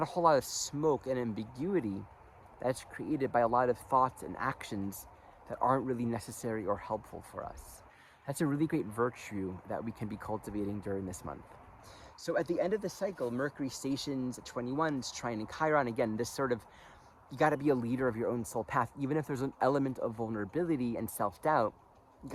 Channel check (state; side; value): identical; both; correlation 1.00